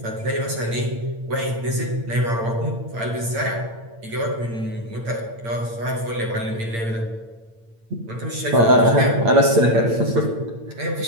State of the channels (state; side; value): late; left; 8.8 ms